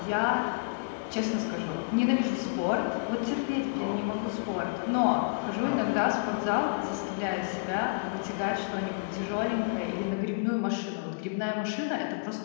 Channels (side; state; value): right; quieter; 34.0 dB